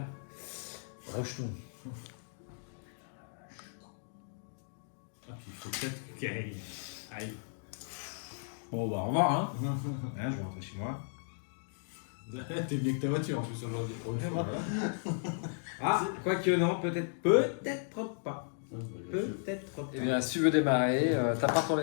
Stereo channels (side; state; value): right; silent; digital silence